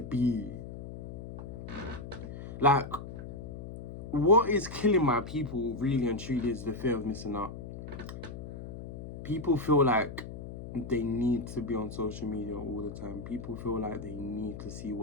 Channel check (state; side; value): noise; left; hum, 10 dB below the sound